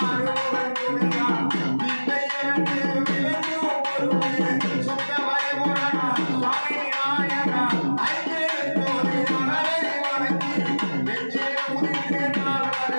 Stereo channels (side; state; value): both; inverted; correlation -1.00